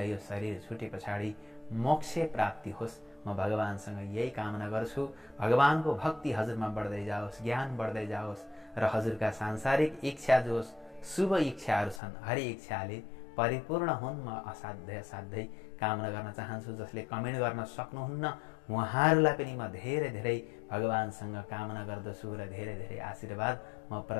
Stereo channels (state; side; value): drops out; right; at 12.0 s